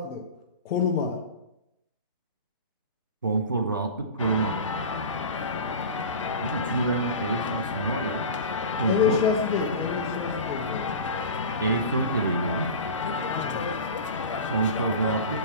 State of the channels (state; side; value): inverted; both; correlation -0.30